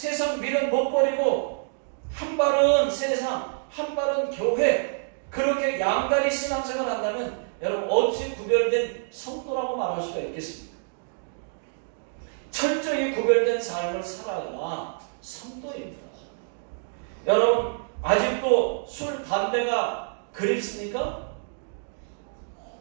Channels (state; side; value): silent; left; digital silence